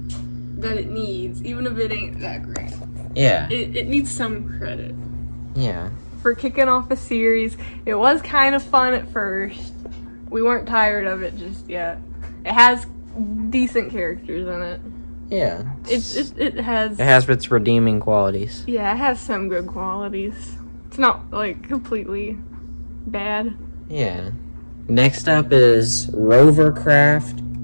that it needs, even if it ain't that great. Yeah. It needs some credit. Yeah. For kicking off a series. It was kind of fun at first. We weren't tired of it just yet. It has decent characters in it. Yeah. It has its redeeming qualities. Yeah, it has some good qualities. It's not, like, completely bad. Yeah. Next up is RoverCraft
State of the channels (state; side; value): inverted; both; correlation -1.00